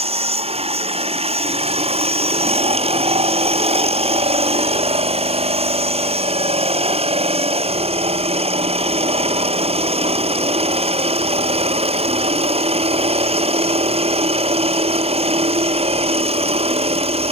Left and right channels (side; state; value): left; late; 0.29 ms